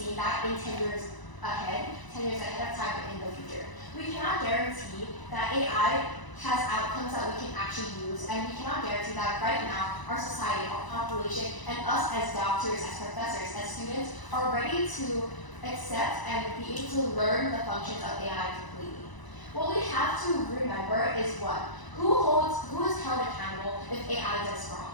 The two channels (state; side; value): late; right; 1.0 ms